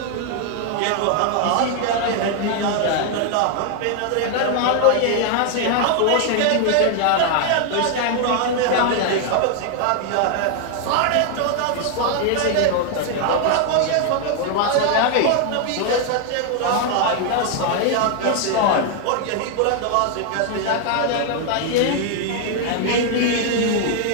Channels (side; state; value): both; different; correlation 0.00